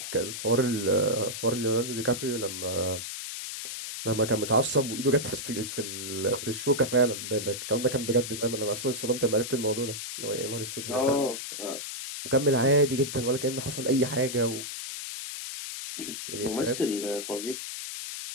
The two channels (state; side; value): noise; left; hiss, 7 dB below the sound